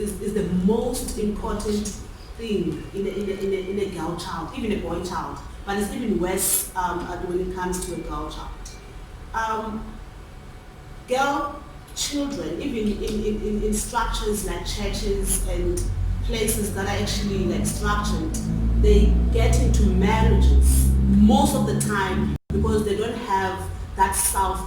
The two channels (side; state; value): both; identical; correlation 1.00